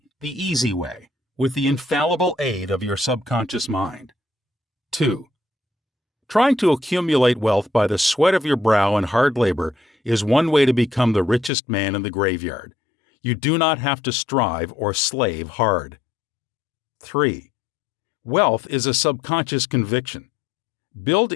the easy way, with the infallible aid of your subconscious mind. 2. Trying to accumulate wealth by the sweat of your brow and hard labor is one way to become the richest man in the graveyard. You do not have to strive or slave hard. 3. Wealth is a subconscious conviction. Build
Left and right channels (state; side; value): drops out; right; at 11.5 s